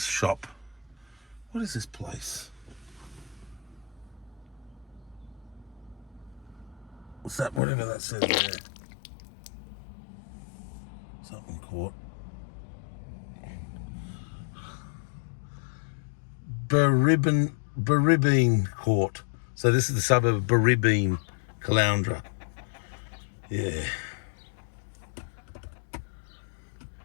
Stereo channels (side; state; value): right; drops out; at 7.6 s